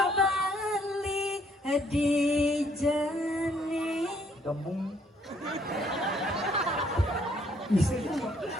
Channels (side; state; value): both; normal; correlation 0.66